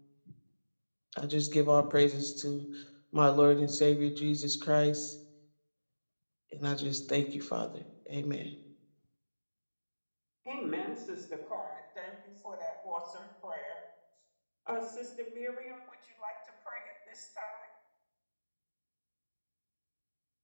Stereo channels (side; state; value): both; inverted; correlation -1.00